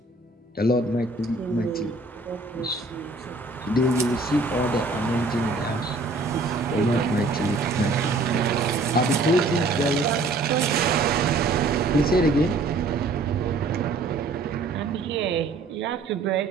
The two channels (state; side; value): quieter; left; 3.3 dB